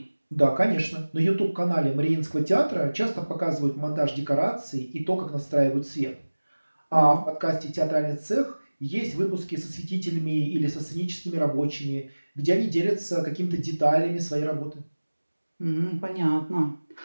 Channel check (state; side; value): inverted; both; correlation -1.00